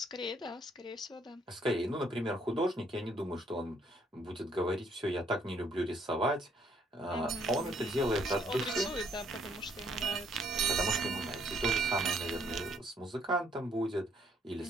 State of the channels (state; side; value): normal; both; correlation 0.67